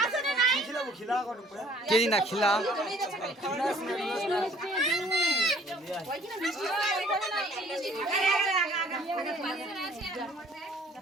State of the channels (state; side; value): normal; both; correlation 0.57